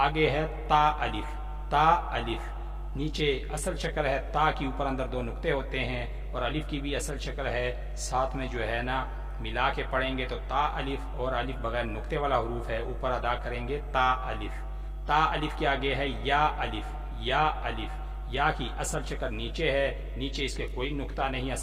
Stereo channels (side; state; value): both; identical; correlation 1.00